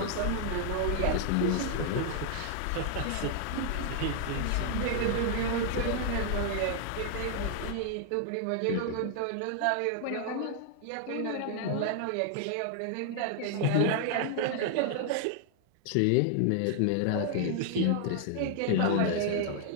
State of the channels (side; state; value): both; different; correlation 0.00